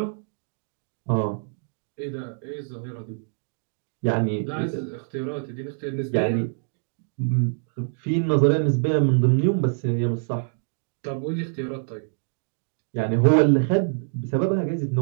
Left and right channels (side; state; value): left; silent; digital silence